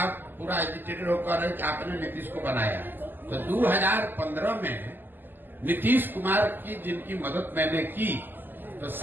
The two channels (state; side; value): late; left; 0.091 ms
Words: पूरा एजिटेटेड होकर रहे कि आपने नीतीश को बनाया, तो 2015 में नीतीश कुमार की जिनकी मदद मैंने की, तो